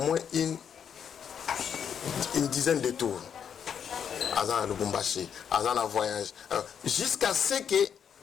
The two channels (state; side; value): quieter; right; 7.9 dB